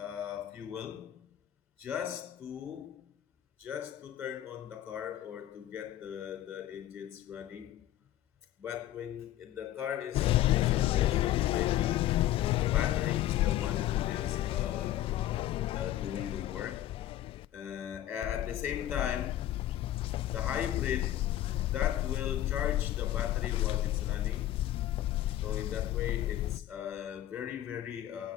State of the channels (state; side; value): quieter; right; 13.1 dB